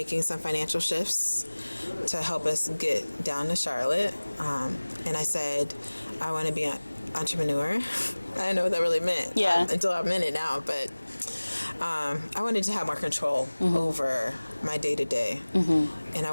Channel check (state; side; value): inverted; both; correlation -1.00